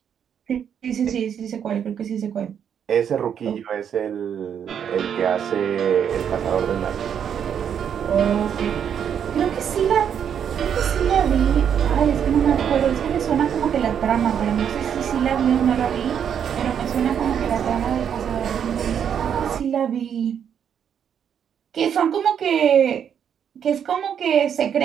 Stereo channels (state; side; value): quieter; left; 8.3 dB